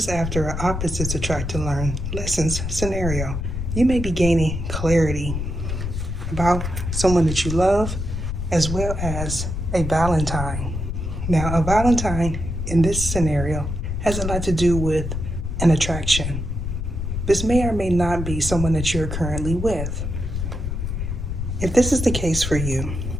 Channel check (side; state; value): left; noise; rumble, 4 dB below the sound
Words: after an opposites attract to learn lessons scenario. You may be gaining clarity about someone that you love as well as a Valentine. Now, a Valentine in this scenario has a lot to do with an attraction. This may or may not be someone that you're currently with. If this is the case for you,